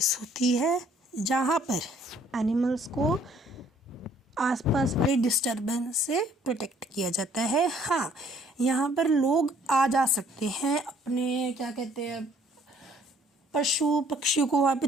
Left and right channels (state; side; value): normal; both; correlation 0.61